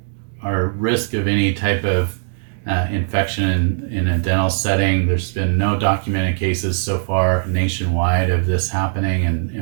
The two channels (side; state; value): left; silent; digital silence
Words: our risk of any type of infection in a dental setting, there's been no documented cases so far nationwide of this happening,